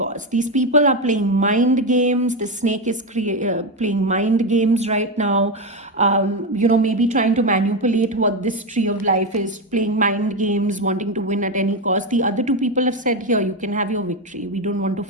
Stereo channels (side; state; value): both; normal; correlation 0.12